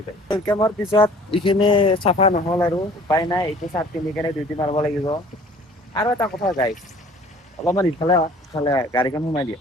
ৱেলকামৰ পিছত এইখিনি চাফা নহ'ল আৰু উপায় নাই এইটো চাৰ্ট পিন্ধি কেনে ডিউটি মাৰিব লাগিব আৰু এটা কথা গাইছ অলপমান ইফালে গাড়ীখন সোমাই দিয়া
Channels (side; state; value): both; normal; correlation 0.51